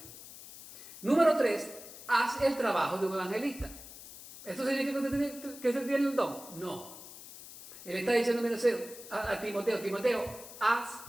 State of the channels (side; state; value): left; noise; hiss, 15 dB below the sound